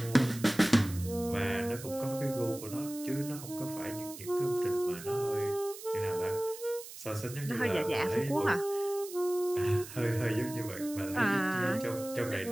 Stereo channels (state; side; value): noise; right; hiss, 13 dB below the sound